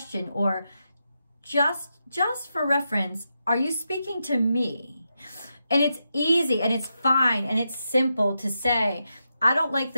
Or just for reference, are you speaking to me? And it's easy and it's fine and it's simple to say, I don't like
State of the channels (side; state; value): both; inverted; correlation -0.86